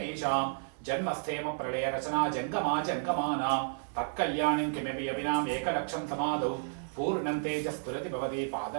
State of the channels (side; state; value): left; silent; 56 dB below the other